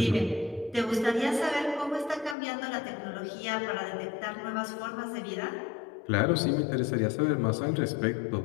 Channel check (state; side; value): drops out; right; at 2.4 s